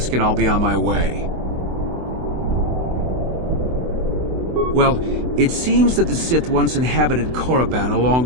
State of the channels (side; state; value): left; late; 24 ms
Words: and I'll be on my way. Well, it seems that the Sith once inhabited Korriban a